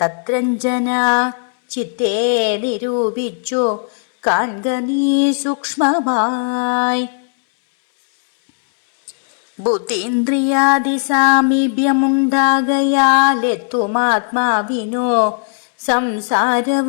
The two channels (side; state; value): right; silent; digital silence